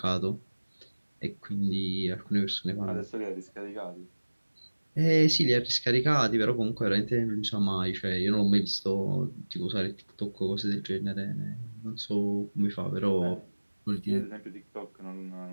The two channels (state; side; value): inverted; both; correlation -1.00